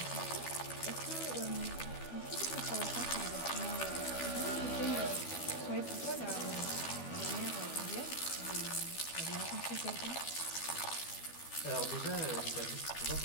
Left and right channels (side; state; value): right; late; 12 ms